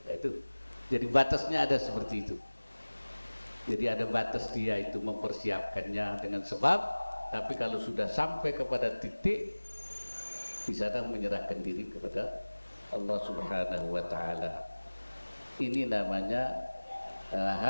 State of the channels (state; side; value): inverted; both; correlation -1.00